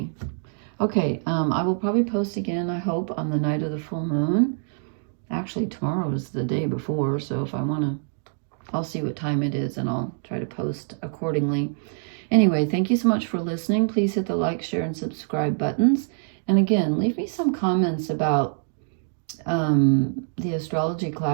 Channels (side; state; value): left; silent; digital silence